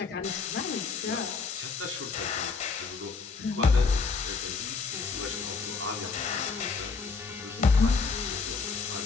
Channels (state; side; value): quieter; right; 4.7 dB